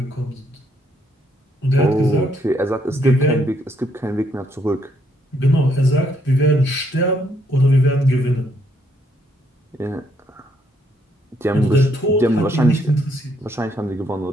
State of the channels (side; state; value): both; normal; correlation 0.72